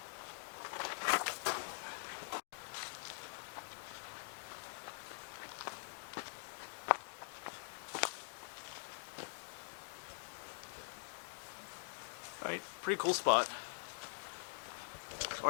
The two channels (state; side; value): silent; right; digital silence